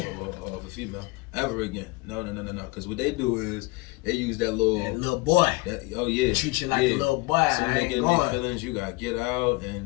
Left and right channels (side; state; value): right; quieter; 23.3 dB